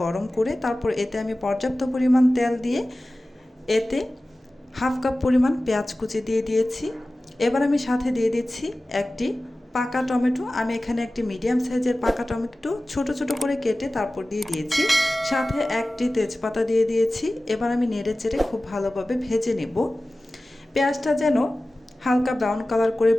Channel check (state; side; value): normal; both; correlation 0.97